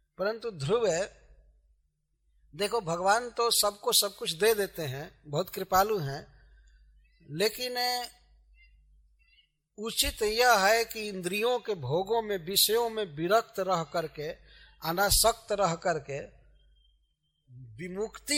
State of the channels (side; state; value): both; identical; correlation 1.00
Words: परंतु ध्रुव है, देखो भगवान तो सबको सब कुछ दे देते हैं, बहुत कृपालु हैं, लेकिन उचित यह है कि इंद्रियों के भोगों में, विषयों में विरक्त रह करके, अनासक्त रह करके